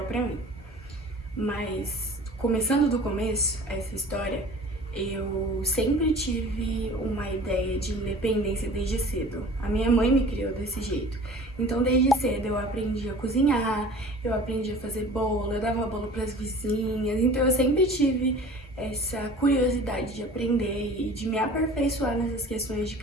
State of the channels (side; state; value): both; normal; correlation 0.44